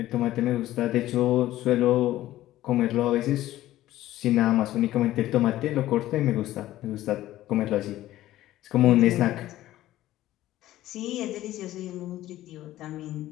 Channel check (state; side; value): quieter; right; 14.7 dB